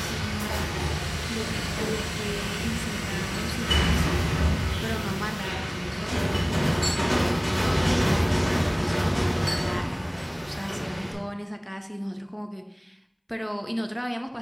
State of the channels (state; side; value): identical; both; correlation 1.00